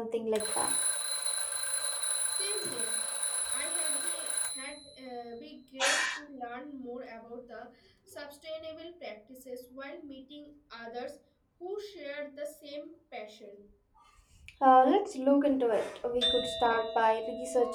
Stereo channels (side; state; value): both; identical; correlation 1.00